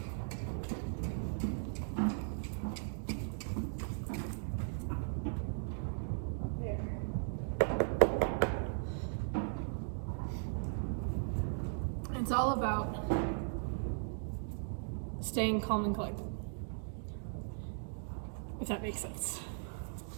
It's all about staying calm and collected, if that makes sense.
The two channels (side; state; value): left; silent; digital silence